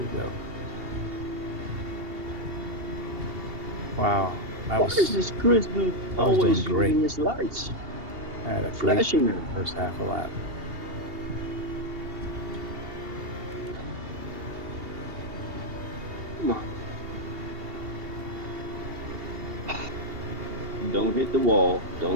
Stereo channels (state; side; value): late; left; 2.8 ms